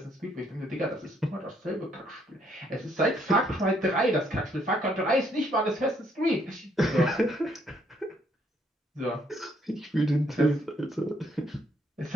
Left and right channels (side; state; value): both; normal; correlation 0.70